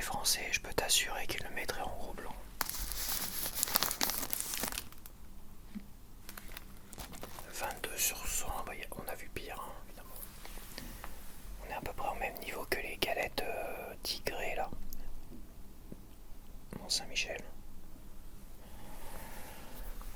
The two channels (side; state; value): both; identical; correlation 1.00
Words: français, je peux t'assurer qu'il le mettrait en gros blanc. 22 sur 100, bah, on a vu pire, hein, évidemment. On est à peu près au même niveau que les galettes tigrées là. Mont Saint-Michel.